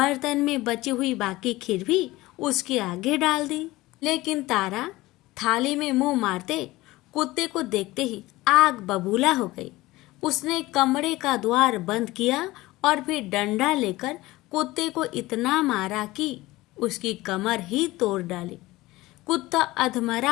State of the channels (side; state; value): right; quieter; 18.9 dB